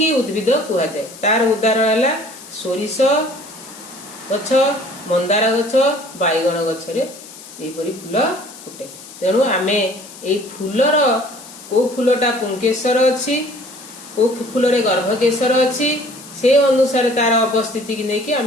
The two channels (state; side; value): noise; left; hiss, 17 dB below the sound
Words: उद्भिद कहा जाए। तार उदाहरण है सोरिष गछ, मंदार गछ, बैगन गछ रे एपरि फूल फुटे। तेणु आमे एई फूलर को फूलटा पुंकेसर अछि, को फूल रे गर्भकेशर अछि, से अनुसार तार अवस्थिति की नेकी